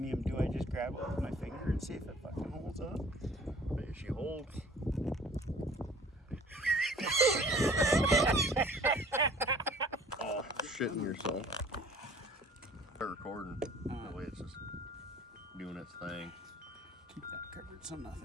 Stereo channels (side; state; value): both; normal; correlation 0.51